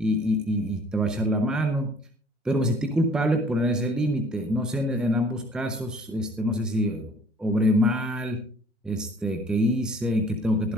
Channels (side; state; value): both; normal; correlation 0.55